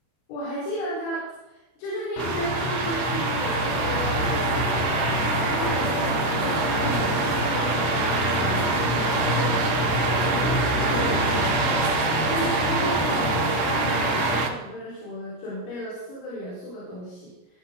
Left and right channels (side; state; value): right; late; 33 ms